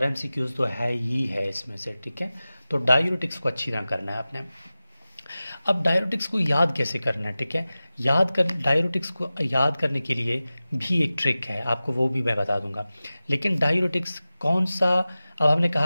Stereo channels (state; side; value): inverted; both; correlation -0.96